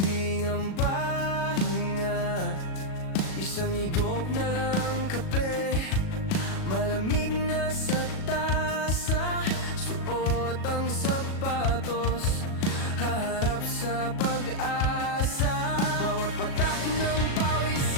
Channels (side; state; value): right; late; 37 ms